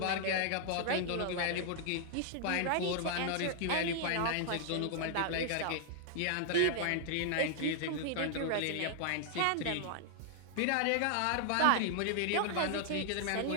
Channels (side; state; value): both; different; correlation 0.00